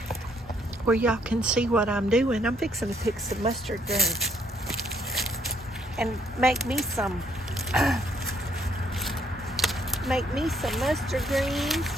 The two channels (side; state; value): both; normal; correlation 0.67